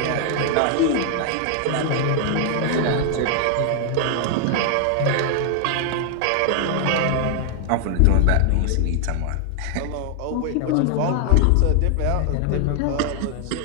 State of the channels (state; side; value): different; both; correlation 0.00